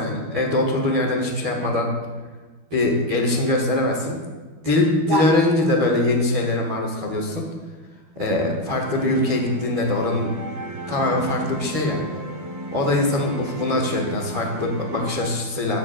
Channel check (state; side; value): late; left; 12 ms